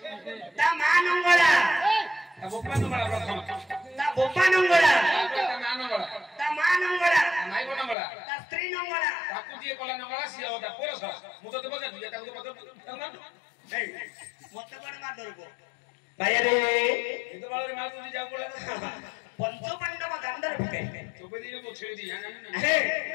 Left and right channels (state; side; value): drops out; right; at 8.0 s